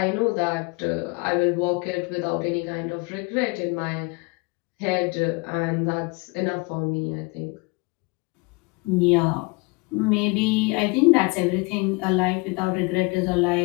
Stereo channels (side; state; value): right; quieter; 27.7 dB